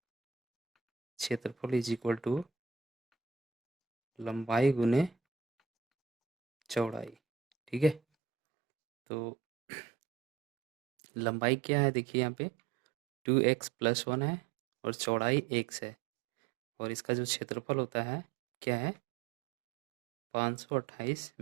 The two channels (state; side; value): drops out; left; at 8.0 s